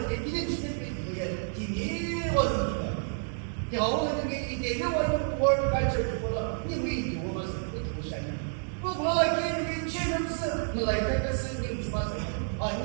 이제 지금 이게 디니원 겨우는 게 이제 요원 월 갈처보다 이미 도와서 그것이 뭐 뭐라게 이제는 라이트가 쓰는 주마서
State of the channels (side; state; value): left; silent; 58 dB below the other